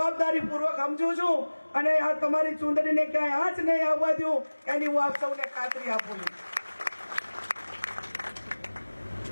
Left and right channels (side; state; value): both; inverted; correlation -1.00